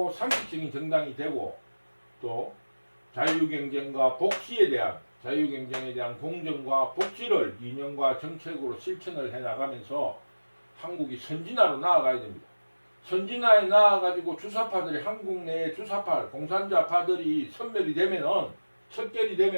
상식적인 정당이 되고 또 자유경쟁과 공정과 복지를 이념과 정책으로 실천을 해나가면서 한국이 선진화로 나아가야 됩니다. 선진화에 나아가지고 주사파들이 한국 내에 주사파, 공산주의파들이 척결이 되면은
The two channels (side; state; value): both; inverted; correlation -1.00